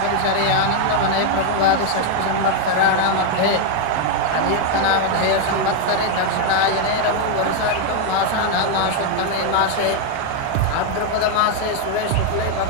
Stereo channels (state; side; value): different; both; correlation 0.00